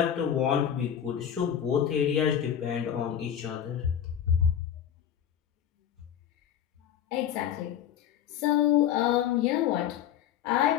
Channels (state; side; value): quieter; right; 9.6 dB